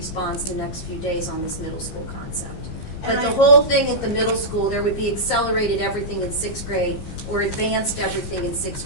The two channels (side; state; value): right; late; 15 ms